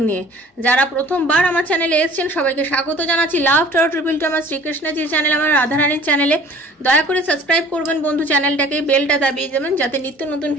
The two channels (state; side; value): normal; both; correlation 0.49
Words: নিয়ে। যারা প্রথমবার আমার চ্যানেলে এসেছেন সবাইকে স্বাগত জানাচ্ছি। লাভ 222 আমার শ্রীকৃষ্ণজির চ্যানেল, আমার রাধারানীর চ্যানেলে। দয়া করে সাবস্ক্রাইব করবেন বন্ধু চ্যানেলটাকে, বেলটা দাবিয়ে দেবেন যাতে নিত্য নতুন